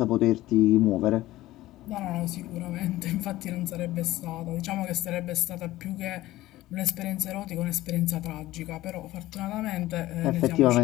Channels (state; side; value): quieter; right; 16.4 dB